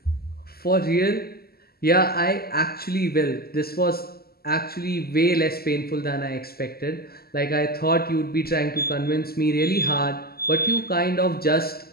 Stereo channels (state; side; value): late; right; 0.45 ms